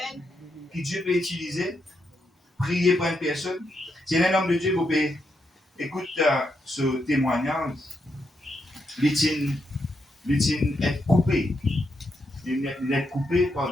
que Dieu peut utiliser, prier pour une personne. C'est un homme de Dieu, vous pouvez écouter ce témoignage. Il est coupé. Il est coupé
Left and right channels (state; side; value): normal; both; correlation 0.81